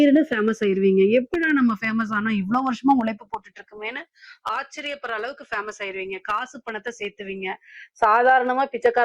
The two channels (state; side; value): identical; both; correlation 1.00